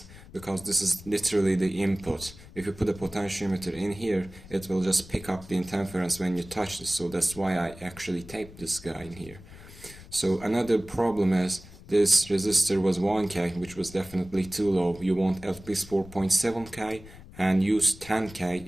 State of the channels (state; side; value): noise; left; rumble, 18 dB below the sound